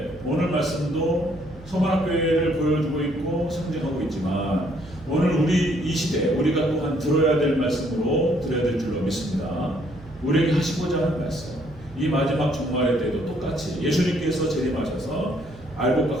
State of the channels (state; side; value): noise; right; hum, 19 dB below the sound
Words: 오늘 말씀도 서문학교회를 보여주고 있고 상징하고 있지만 오늘 우리 이 시대 우리가 또한 들어야 될 말씀으로 드려야 될 줄로 믿습니다. 우리에게 하시고자 하는 말씀 이 마지막 종말의 때도 똑같이 예수님께서 재림하셔서 알곡과